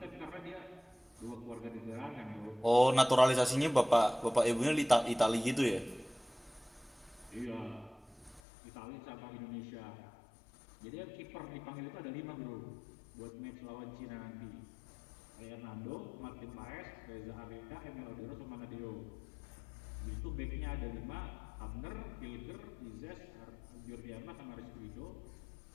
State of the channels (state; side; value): drops out; right; at 8.4 s